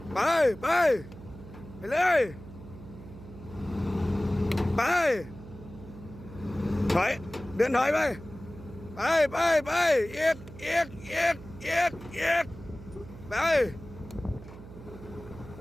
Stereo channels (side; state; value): right; noise; hum, 16 dB below the sound